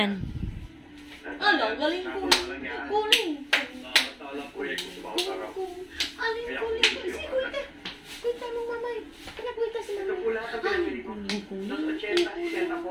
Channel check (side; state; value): both; identical; correlation 1.00